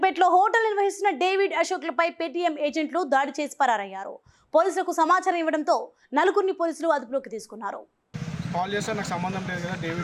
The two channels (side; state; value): both; identical; correlation 1.00